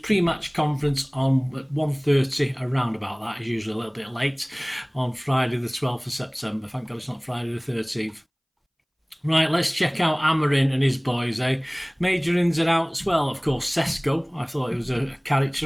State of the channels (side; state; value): both; identical; correlation 1.00